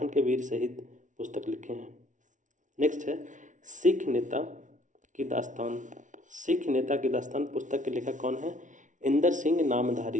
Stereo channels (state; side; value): late; left; 0.37 ms